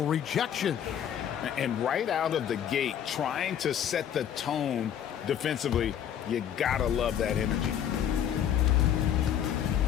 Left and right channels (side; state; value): right; quieter; 9.5 dB